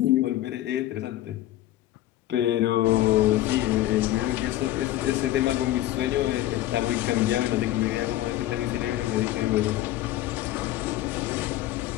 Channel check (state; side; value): quieter; right; 14.6 dB